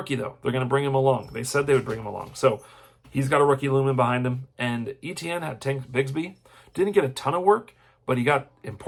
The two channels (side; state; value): both; identical; correlation 1.00